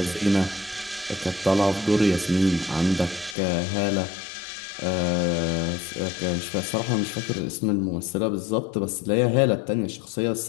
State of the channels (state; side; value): drops out; right; at 3.4 s